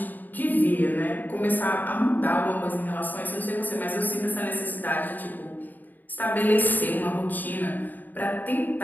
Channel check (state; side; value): late; right; 0.086 ms